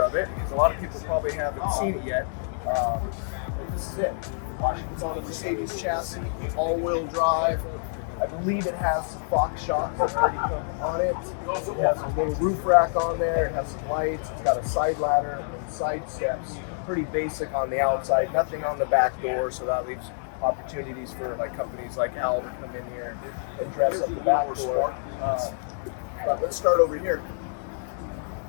of it because a lot of people probably haven't seen it yet. But this is it. It's on a Mercedes chassis, all-wheel drive. I believe it has some box shocks that already come on it. It has a little roof rack on there. It has some lights. It's got a side ladder and side steps. Pretty basic on the outside. Nothing on the back door, so that leaves opportunities for like companies like Al to come in here and dress up the back door. But let's start over here.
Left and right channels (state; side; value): silent; right; digital silence